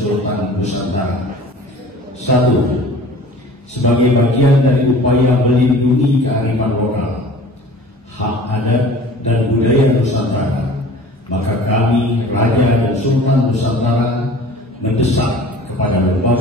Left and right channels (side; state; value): both; normal; correlation 0.44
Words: Nusantara. 1. Sebagai bagian dari upaya melindungi kearifan lokal, hak adat dan budaya Nusantara, maka kami, Raja dan Sultan Nusantara, mendesak kepada